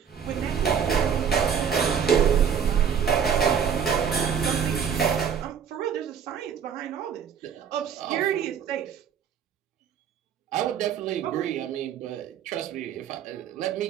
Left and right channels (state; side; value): quieter; left; 7.6 dB